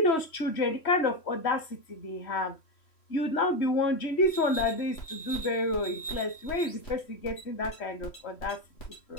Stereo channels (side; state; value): right; late; 3.1 ms